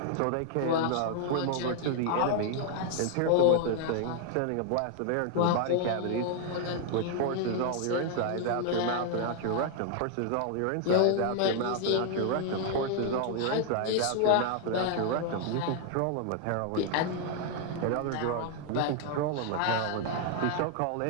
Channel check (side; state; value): both; different; correlation 0.00